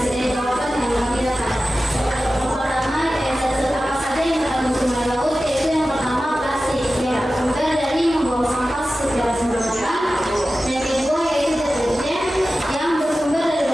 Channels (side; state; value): both; normal; correlation 0.94